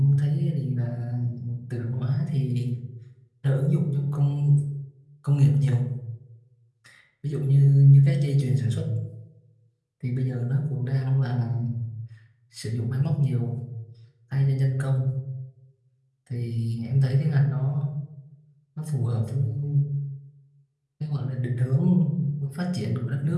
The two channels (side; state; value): both; identical; correlation 1.00